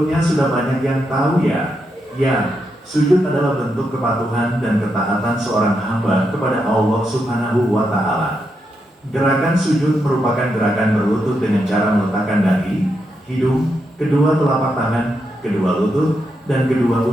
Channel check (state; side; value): normal; both; correlation 0.83